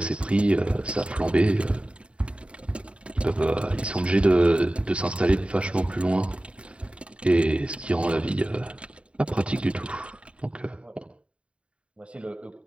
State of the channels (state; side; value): late; left; 0.059 ms